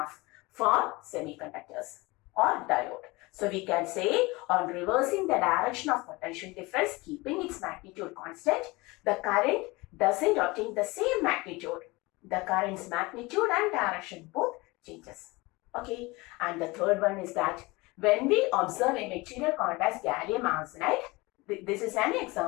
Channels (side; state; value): right; quieter; 23.2 dB